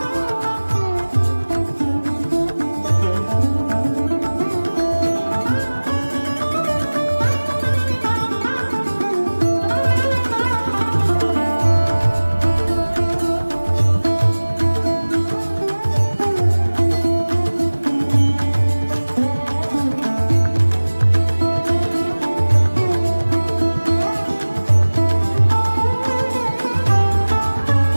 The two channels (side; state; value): both; inverted; correlation -1.00